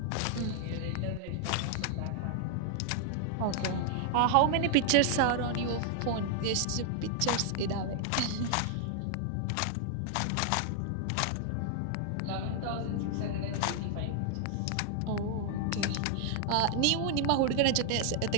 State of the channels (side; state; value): both; different; correlation 0.00